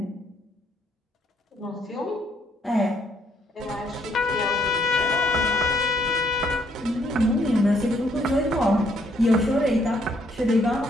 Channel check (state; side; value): normal; both; correlation 0.69